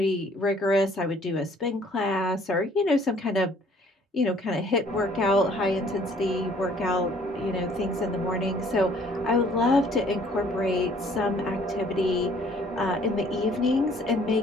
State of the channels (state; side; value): normal; both; correlation 0.58